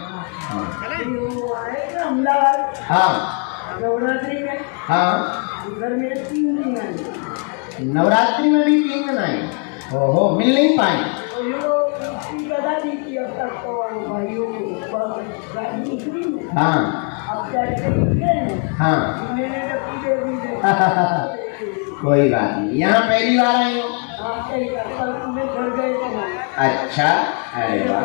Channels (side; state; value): right; quieter; 38.5 dB